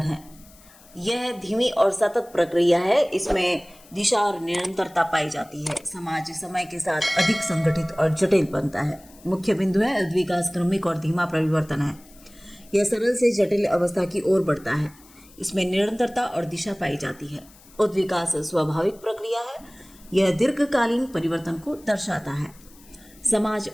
है। यह धीमी और सतत प्रक्रिया है। इसमें दिशा और निरंतरता पाई जाती है। समाज समय के साथ अधिक संगठित और जटिल बनता है। मुख्य बिंदु है, उद्विकास क्रमिक और धीमा परिवर्तन है। यह सरल से जटिल अवस्था की ओर बढ़ता है। इसमें निरंतरता और दिशा पाई जाती है। उद्विकास स्वाभाविक प्रक्रिया है। यह दीर्घकालीन परिवर्तन को दर्शाता है। समाज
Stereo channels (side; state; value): left; noise; hiss, 25 dB below the sound